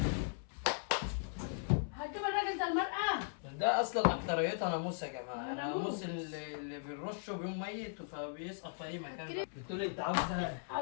هتجيب الراجل ده المرأة؟ ده اصلا اكتريتها ناموس يا جماعه، ناموس اللي بنرشه بيوم ميت فبيسقط في اي مكان. بتقولي انت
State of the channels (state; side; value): silent; right; 52 dB below the other